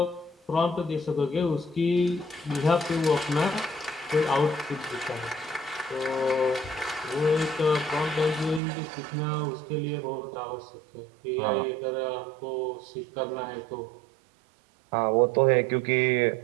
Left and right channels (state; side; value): drops out; left; at 8.6 s